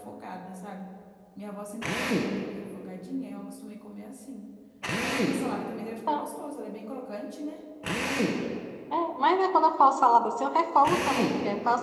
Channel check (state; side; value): identical; both; correlation 1.00